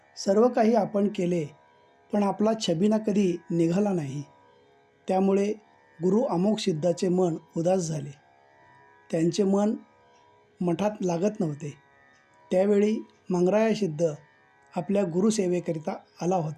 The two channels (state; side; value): identical; both; correlation 1.00